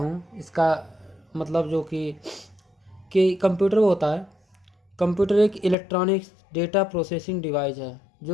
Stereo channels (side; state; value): right; drops out; at 5.8 s